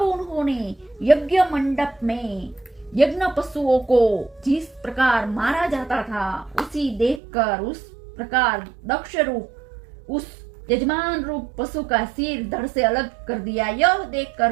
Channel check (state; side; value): drops out; left; at 7.2 s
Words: उन्होंने यज्ञ मंडप में यज्ञ पशुओं को जिस प्रकार मारा जाता था उसी देखकर उस प्रकार दक्ष रूप उस यजमान रूप पशु का सिर धड़ से अलग कर दिया। यह